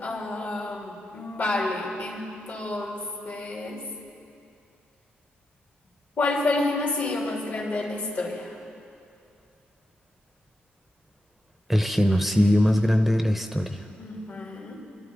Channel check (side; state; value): both; normal; correlation 0.88